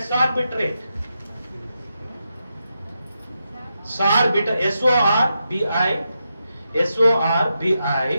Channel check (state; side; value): inverted; both; correlation -0.86